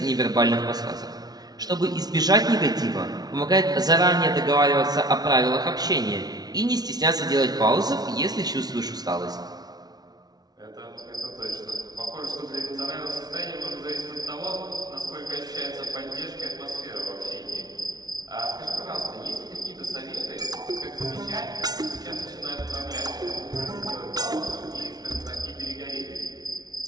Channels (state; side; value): late; left; 0.19 ms